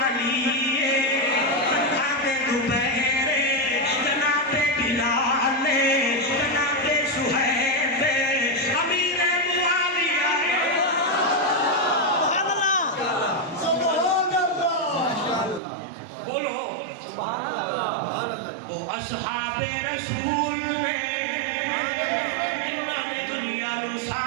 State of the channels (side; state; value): left; drops out; at 15.6 s